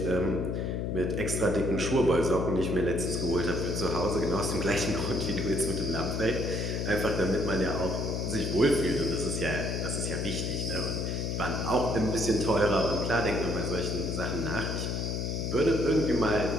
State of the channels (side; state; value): left; noise; hum, 1 dB below the sound